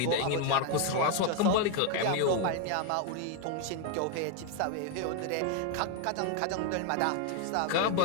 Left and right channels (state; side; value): different; both; correlation 0.01